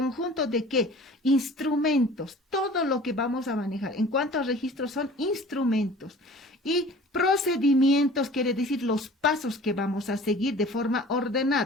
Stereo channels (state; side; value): normal; both; correlation 0.45